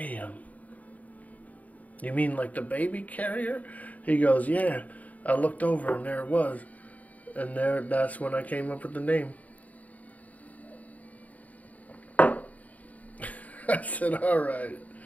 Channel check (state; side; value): late; right; 0.073 ms